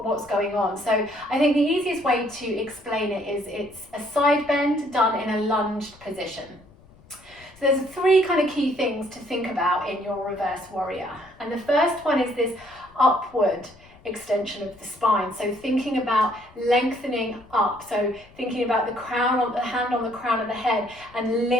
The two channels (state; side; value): noise; left; rumble, 26 dB below the sound